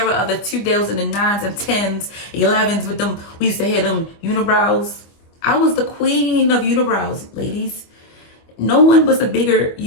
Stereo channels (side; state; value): right; late; 25 ms